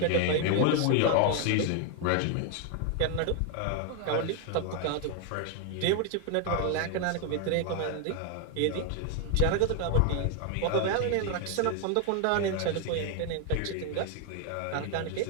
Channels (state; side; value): different; both; correlation 0.00